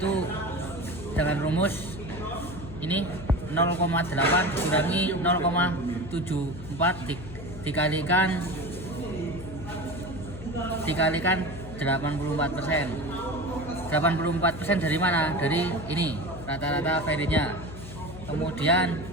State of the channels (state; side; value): noise; left; hum, 12 dB below the sound